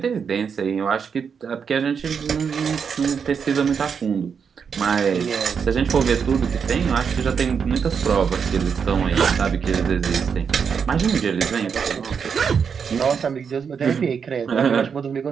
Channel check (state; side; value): quieter; left; 6.5 dB